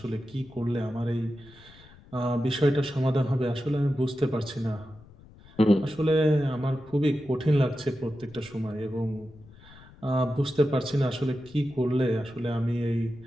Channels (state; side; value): noise; left; rumble, 23 dB below the sound